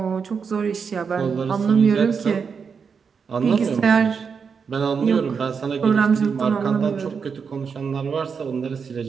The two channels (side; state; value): left; quieter; 6.0 dB